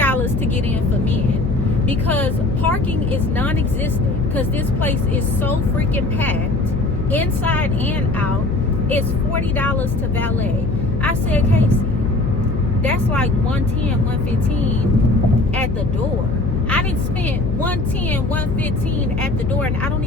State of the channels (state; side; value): noise; left; hum, 4 dB below the sound